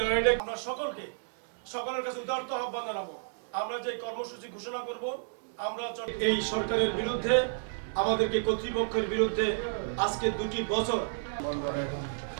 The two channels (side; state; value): left; silent; digital silence